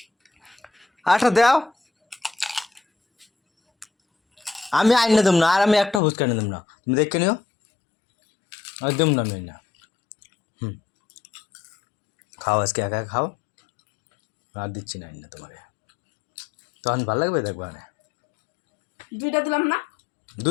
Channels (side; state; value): right; drops out; at 6.0 s